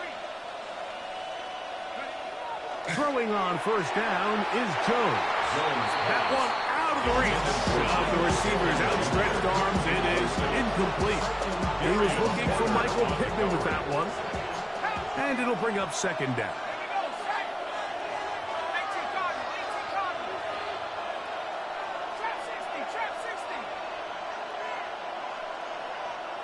Throwing on 1st down is Jones. That one out of the reach of the receiver's outstretched arms. It is incomplete. He was looking for Michael Pittman with that one. And it'll bring up 2nd down.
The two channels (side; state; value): both; identical; correlation 1.00